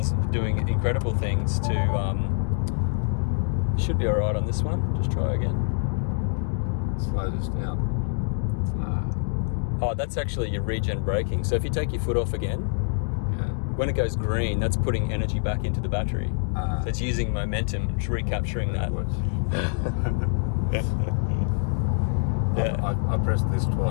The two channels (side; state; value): right; silent; digital silence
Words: doing incredible things to should be alright on this one. Just try again. Slow this down. No. Oh, that's actually your regen braking. So if you take your foot off again, when it goes green, that's putting energy back into the battery. So it's using momentum and recapturing that. I pressed this